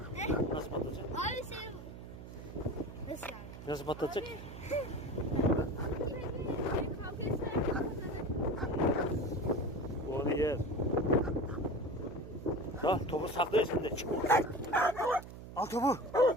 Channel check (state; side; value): noise; right; hum, 13 dB below the sound